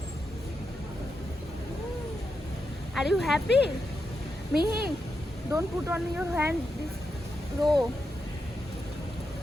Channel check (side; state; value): both; normal; correlation 0.85